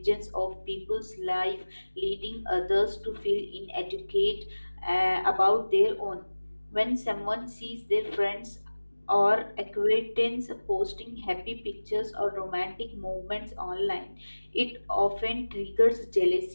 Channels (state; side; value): inverted; both; correlation -1.00